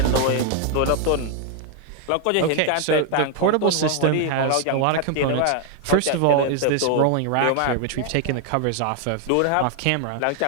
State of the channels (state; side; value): different; both; correlation 0.01